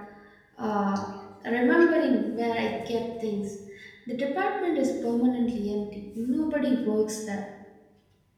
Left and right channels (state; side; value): identical; both; correlation 1.00